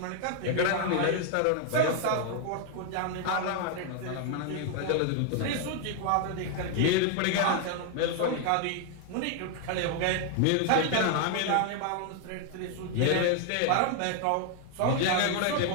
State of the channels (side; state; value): both; different; correlation 0.00